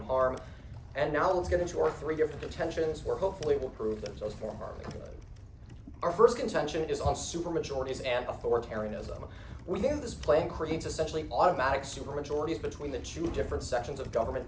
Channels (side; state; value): both; identical; correlation 1.00